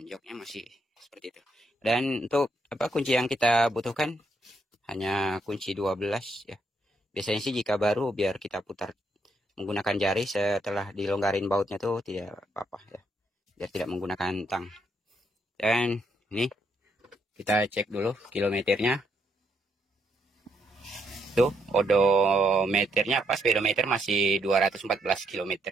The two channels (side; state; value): both; normal; correlation 0.76